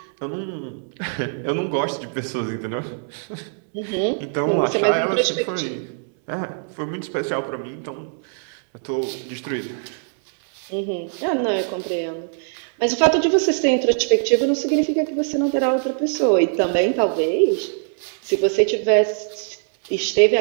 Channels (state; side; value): silent; left; 64 dB below the other